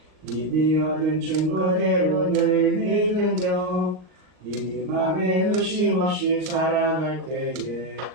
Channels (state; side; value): late; left; 39 ms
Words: 이미 얻은 증거대로 늘 믿으며 이 맘에 의심 없이 살아갈 때에